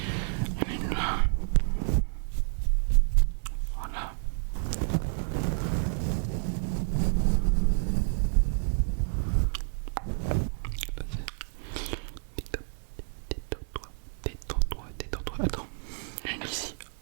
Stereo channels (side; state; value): left; silent; 58 dB below the other